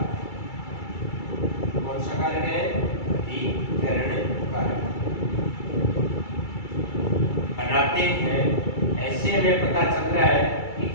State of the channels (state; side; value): late; right; 2.3 ms